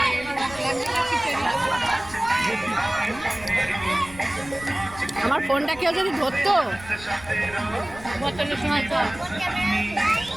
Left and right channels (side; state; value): left; noise; rumble, 18 dB below the sound